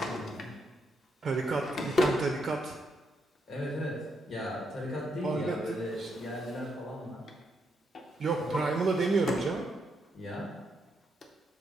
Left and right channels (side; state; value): both; normal; correlation 0.78